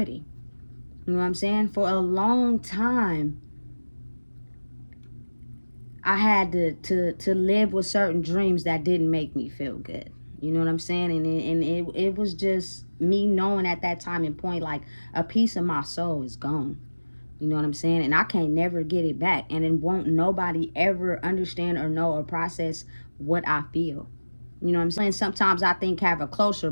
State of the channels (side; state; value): both; inverted; correlation -1.00